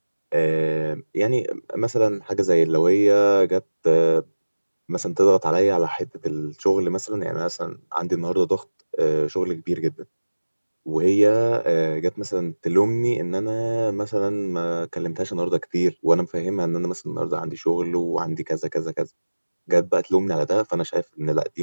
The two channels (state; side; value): inverted; both; correlation -1.00